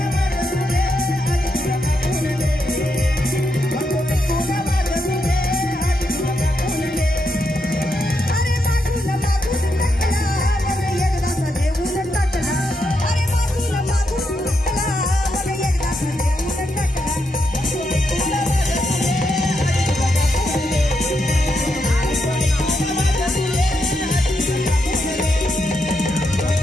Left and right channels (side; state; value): both; normal; correlation 0.82